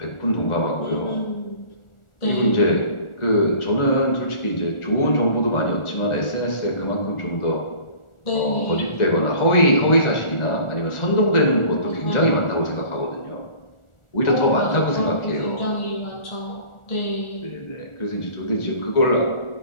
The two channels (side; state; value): right; late; 1.4 ms